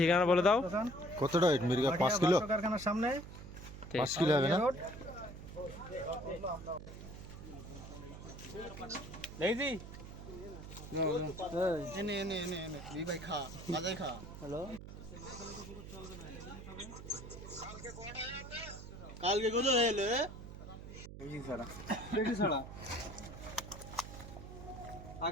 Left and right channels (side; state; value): right; noise; hum, 12 dB below the sound